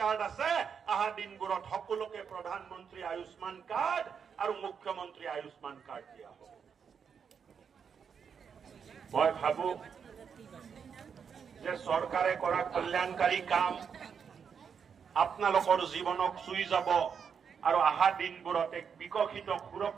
আছে আহা দিনবোৰত সকলোকে প্ৰধানমন্ত্ৰী আয়ুষ্মান কাৰ্ড আৰু মুখ্যমন্ত্ৰী আয়ুষ্মান কাৰ্ড দিয়া হ'ব মই ভাবো যে চৰকাৰে কৰা কল্যাণকাৰী কাম আপোনালোকৰ জীৱনক চুই যাব আৰু আহা দিনবোৰত এক বিকশিত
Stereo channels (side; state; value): left; quieter; 6.8 dB